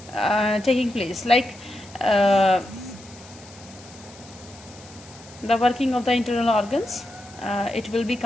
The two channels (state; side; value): noise; left; hiss, 21 dB below the sound